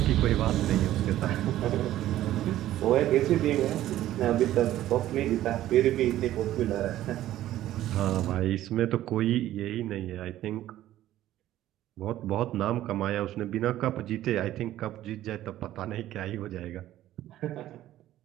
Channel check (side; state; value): left; quieter; 13.7 dB